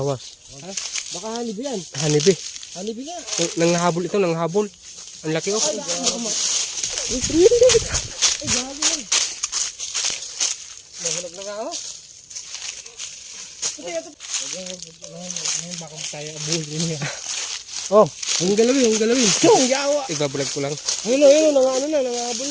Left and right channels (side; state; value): both; identical; correlation 1.00